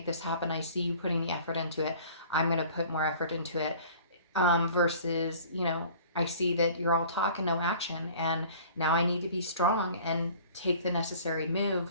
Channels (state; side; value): inverted; both; correlation -0.48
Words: this happen. I see you putting the effort into it. I'm going to put more effort into it. Versus, I see that you're all talk and no action, and now I need to be strong and take the necessary